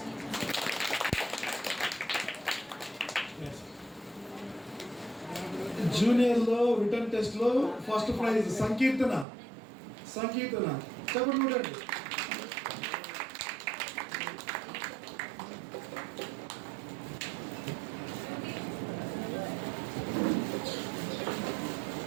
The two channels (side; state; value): left; drops out; at 9.2 s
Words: జూనియర్ లో రిటర్న్ టెస్ట్ లో ఫస్ట్ ప్రైజ్ సంకీర్తన. చెప్పండి చూడండి.